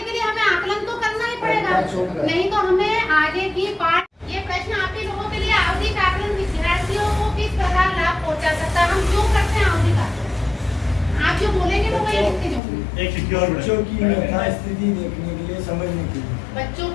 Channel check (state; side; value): drops out; right; at 12.6 s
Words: लिए हमें आकलन तो करना ही पड़ेगा, नहीं तो हमें आगे की पाठ। ये प्रश्न आप ही लोगों के लिए, आवधिक आकलन विद्यार्थियों को किस प्रकार लाभ पहुंचा सकता है, हम क्यों करते हैं आवधिक आकलन? आप जो बोलेंगे तो वही लिखते जाऊंगी। बच्चों की यथास्थिति देखने के लिए, समझने के लिए, बच्चों